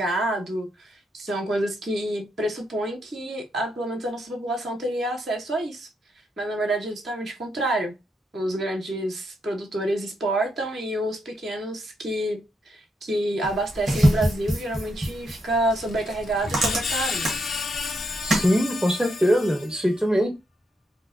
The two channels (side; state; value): both; normal; correlation 0.80